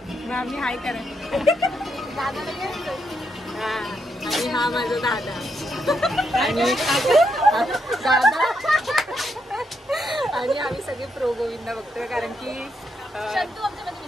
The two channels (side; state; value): both; normal; correlation 0.79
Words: हाय करा, हा, आणि हा माझा दादा आणि दादा, आणि आम्ही सगळे प्रो गोविंदा बघतोय कारण